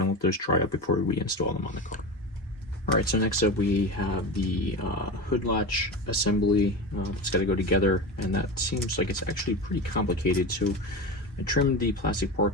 going to let those dry up before we install them on the car. Alright, so next up we have the hood latch assembly. It's got to go together, and that seems like it's actually pretty complicated. So I trimmed the plastic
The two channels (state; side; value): normal; both; correlation 0.24